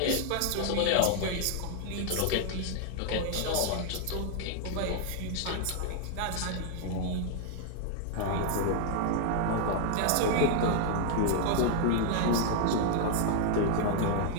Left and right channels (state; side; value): different; both; correlation 0.00